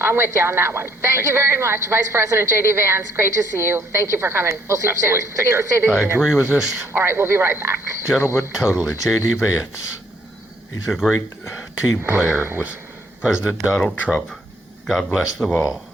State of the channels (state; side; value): normal; both; correlation 0.66